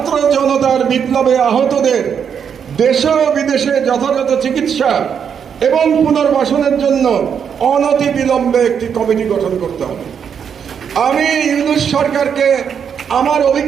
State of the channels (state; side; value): quieter; left; 7.5 dB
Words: জনতার বিপ্লবে আহতদের দেশে ও বিদেশে যথাযথ চিকিৎসা এবং পুনর্বাসনের জন্য অনতি বিলম্বে একটি কমিটি গঠন করতে হবে। আমি ইউনূস সরকারকে আমার